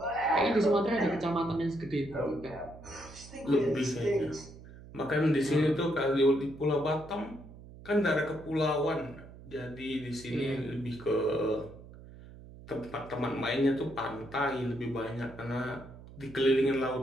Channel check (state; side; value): noise; right; hum, 17 dB below the sound